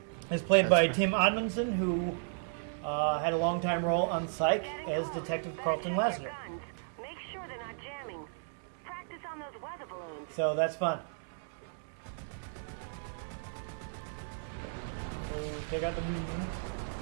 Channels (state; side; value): silent; left; 55 dB below the other